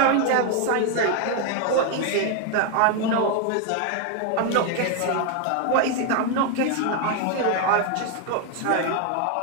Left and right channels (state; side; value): different; both; correlation 0.01